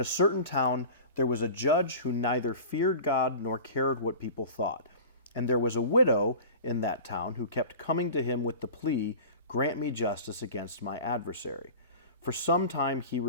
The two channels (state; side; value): inverted; both; correlation -0.37